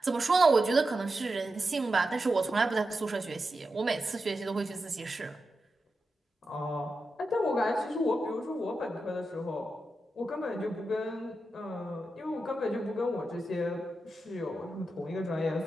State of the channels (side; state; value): both; normal; correlation 0.89